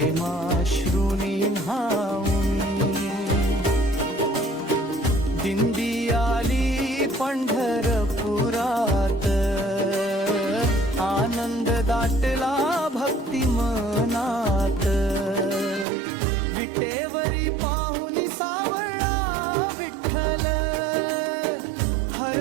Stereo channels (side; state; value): left; drops out; at 15.9 s